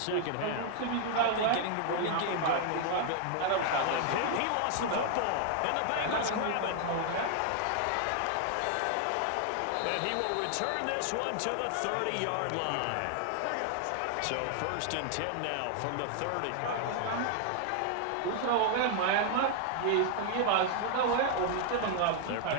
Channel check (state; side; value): different; both; correlation 0.00